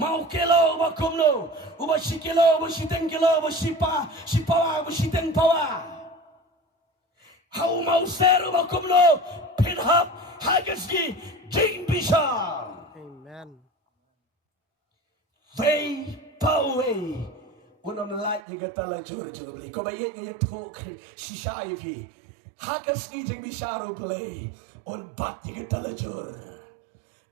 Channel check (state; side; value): drops out; left; at 18.4 s